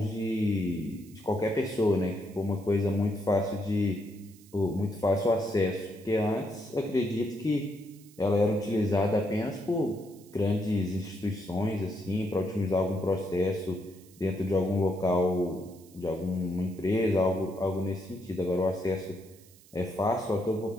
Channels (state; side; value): noise; right; hiss, 25 dB below the sound